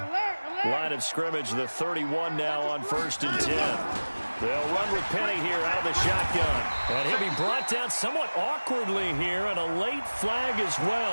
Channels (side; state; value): both; inverted; correlation -1.00